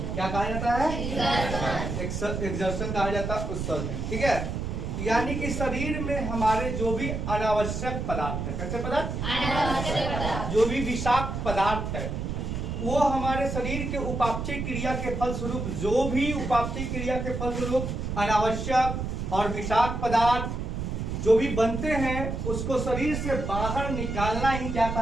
क्या कहा जाता है? एग्जर्शन कहा जाता है, उत्सर्जन। ठीक है, यानी कि शरीर में हमारे जो भी अनावश्यक पदार्थ है, कैसे पदार्थ? अनावश्यक पदार्थ। जो भी विषाक्त पदार्थ है वो हमारे शरीर के उपापचय क्रिया के फलस्वरूप, जो भी उपापचय क्रिया के फलस्वरूप अनावश्यक और विषाक्त पदार्थ जो भी बनते हैं उसको शरीर से बाहर निकालना ही क्या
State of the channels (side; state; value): right; noise; rumble, 3 dB below the sound